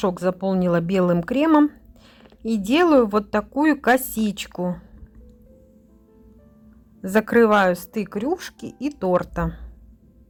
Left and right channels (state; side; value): identical; both; correlation 1.00